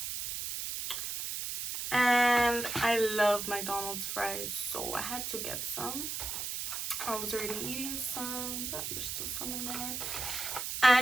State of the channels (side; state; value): right; noise; hiss, 4 dB below the sound